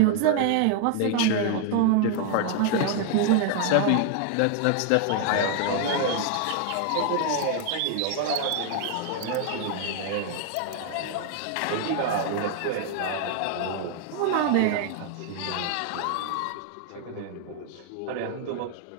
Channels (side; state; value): both; different; correlation 0.00